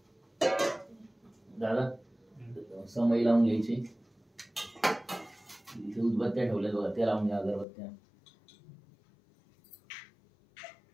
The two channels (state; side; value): drops out; right; at 7.7 s